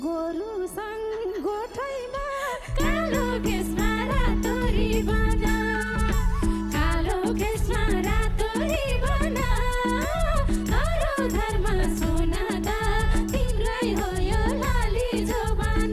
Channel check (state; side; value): identical; both; correlation 1.00